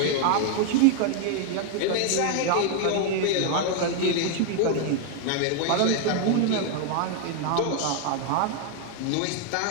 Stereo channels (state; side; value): different; both; correlation 0.00